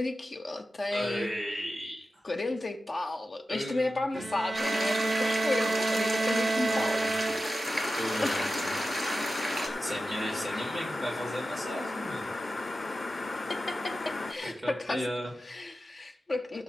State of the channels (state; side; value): normal; both; correlation 0.93